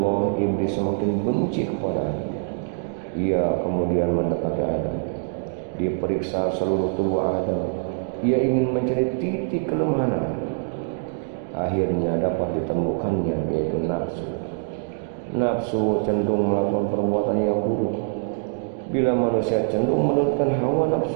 iblis semakin benci kepadanya. Ia kemudian mendekati Adam. Diperiksa seluruh tubuh Adam. Ia ingin mencari titik kelemahan Adam. Akhirnya dapat ditemukannya, yaitu nafsu. Nafsu cenderung melakukan perbuatan yang buruk. Bila manusia cenderung menurutkan hawa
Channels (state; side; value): silent; left; digital silence